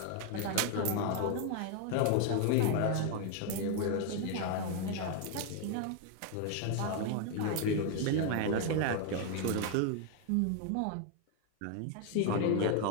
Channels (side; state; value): both; different; correlation 0.01